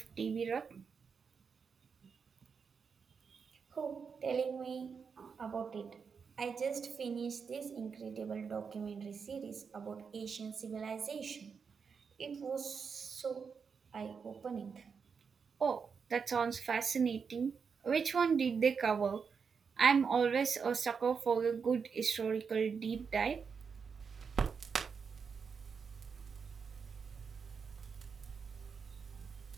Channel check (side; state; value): left; quieter; 5.9 dB